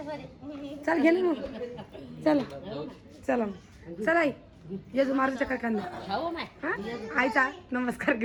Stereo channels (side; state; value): both; identical; correlation 1.00